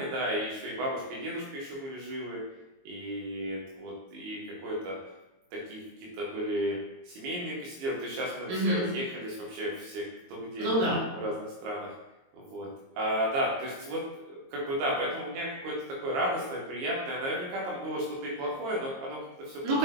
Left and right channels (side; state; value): left; late; 22 ms